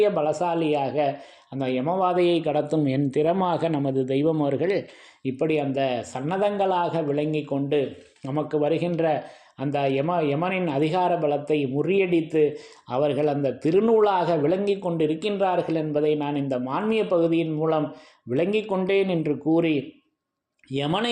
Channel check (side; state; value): both; identical; correlation 1.00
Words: பலசாலியாக அந்த யமவாதையை கடத்தும் என் திறமாக நமது தெய்வம் அவர்கள் இப்படி அந்த சன்னதங்களாக விளங்கி கொண்டு நமக்கு வருகின்ற அந்த யமனின் அதிகார பலத்தை முறியடித்து அவர்கள் அந்த திருநூலாக விளங்கி கொண்டிருக்கின்றார்கள் என்பதை நான் இந்த மான்மிய பகுதியின் மூலம் விளங்கி கொண்டேன் என்று கூறி,